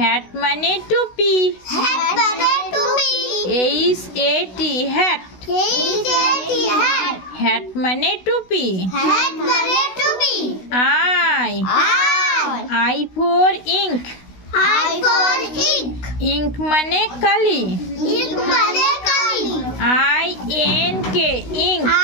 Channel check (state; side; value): late; right; 16 ms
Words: মানে টুপি। H A T hat. Hat মানে টুপি। I I for ink. Ink মানে কালি। I N K ink.